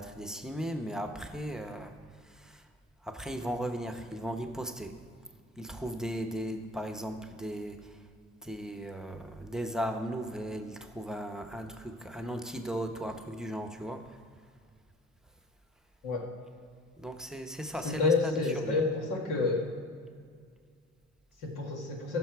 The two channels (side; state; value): both; normal; correlation 0.46